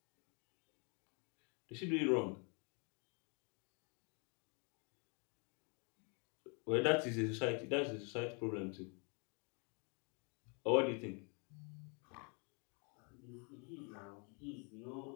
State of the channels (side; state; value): right; quieter; 35.7 dB